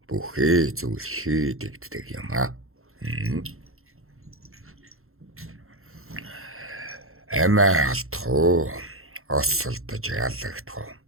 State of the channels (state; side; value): late; left; 0.62 ms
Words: бүхий зүйл хийдэгддэг юм аа. Эмээ алдах уу? Осолдож ялагдах уу?